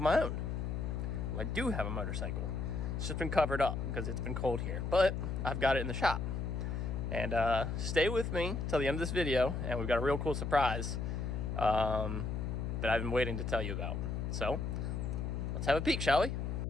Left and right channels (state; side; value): noise; left; hum, 2 dB below the sound